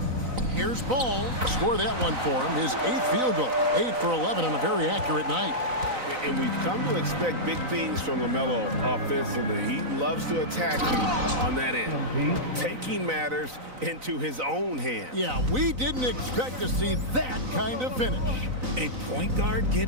Here's Ball. Score that one for him. His 8th field goal. 8 for 11 on a very accurate night. And we've come to expect big things from LaMelo offensively. He loves to attack you on that end, taking matters into his own hands. Yeah, we didn't expect to see that kind of finish. A point guard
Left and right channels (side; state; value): left; late; 3.9 ms